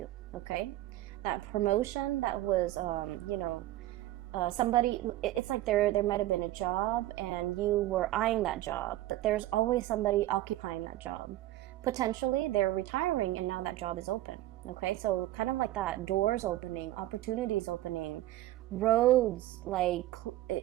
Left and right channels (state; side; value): quieter; left; 15.6 dB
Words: Okay, that promotion that was, somebody, it's like there might have been a job and you were eyeing that job, but there's always somebody occupying that job. Potentially they're retiring and now that job is open. Okay, so kind of like that, doors opening, opportunities opening, roads like